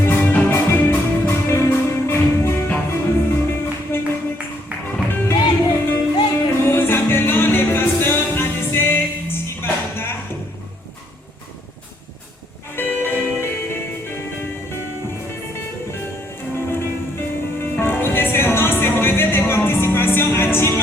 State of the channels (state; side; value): normal; both; correlation 0.69